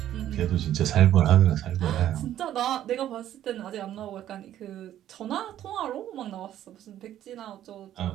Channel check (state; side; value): quieter; left; 11.9 dB